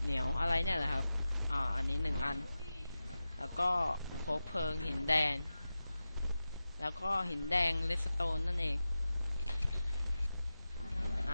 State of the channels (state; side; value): inverted; both; correlation -0.94